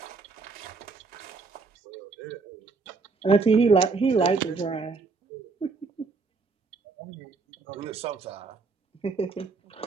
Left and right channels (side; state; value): left; quieter; 4.4 dB